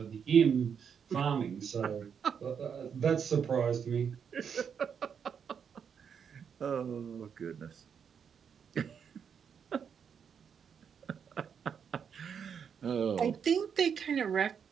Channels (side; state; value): left; quieter; 7.2 dB